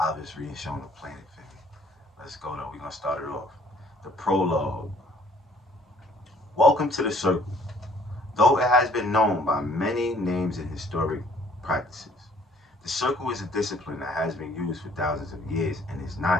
reading show on the planet, family. Let's go though. We're gonna start it off. The prologue. Welcome to the Circle. Though it has been known by many names in historic practices, the Circle is a discipline that has been used for thousands of years and is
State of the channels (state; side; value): normal; both; correlation 0.59